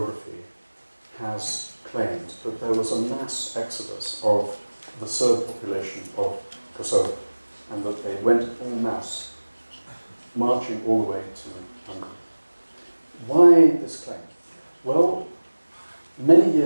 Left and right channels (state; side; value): inverted; both; correlation -1.00